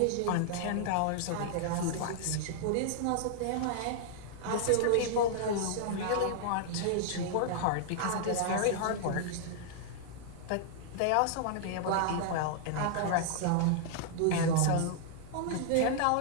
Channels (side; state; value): both; different; correlation -0.01